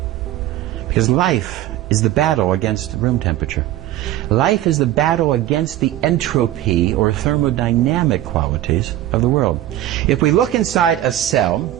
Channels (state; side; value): quieter; left; 13.9 dB